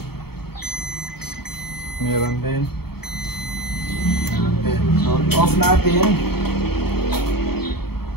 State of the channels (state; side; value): late; right; 0.95 ms